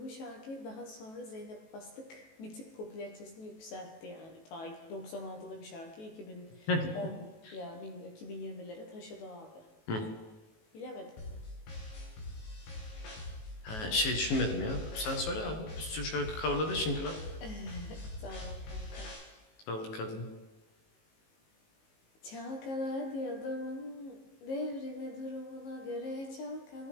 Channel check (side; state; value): right; late; 19 ms